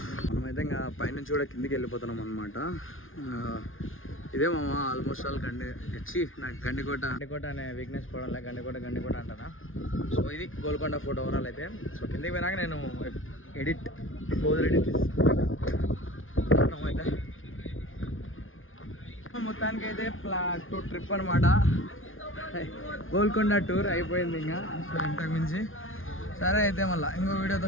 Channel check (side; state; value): right; late; 0.59 ms